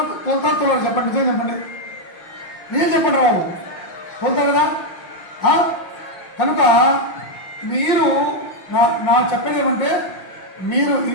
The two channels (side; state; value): right; late; 5.5 ms